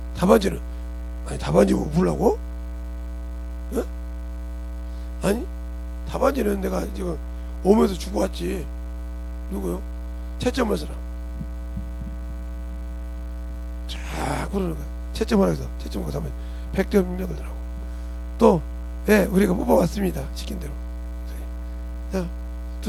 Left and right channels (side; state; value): both; identical; correlation 1.00